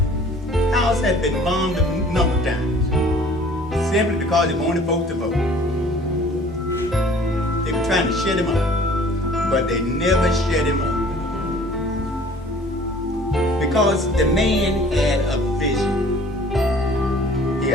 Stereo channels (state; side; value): normal; both; correlation 0.51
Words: House has been bombed a number of times. Simply because they wanted folks to vote. They were trying to shut him up. But they never shut him up. Because the man had a vision. He